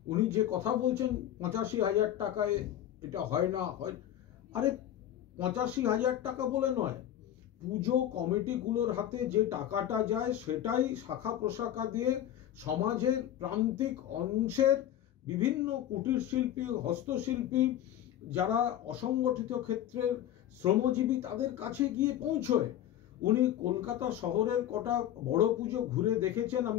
উনি যে কথা বলছেন ৮৫,০০০ টাকায় এটা হয় না হয়, আরে ৮৫,০০০ টাকা বলে নয়, পুজো কমিটিগুলোর হাতে যে টাকাটা যায় সেটাই শাখা প্রশাখা দিয়ে সমাজের প্রান্তিক অংশের বিভিন্ন কুটির শিল্পী, হস্তশিল্পী, যারা অসংগঠিত ক্ষেত্রের শ্রমজীবী তাদের কাছে গিয়ে পৌঁছয়। উনি কলকাতা শহরের কটা বড় পুজো ঘুরে দেখেছেন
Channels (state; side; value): quieter; right; 11.5 dB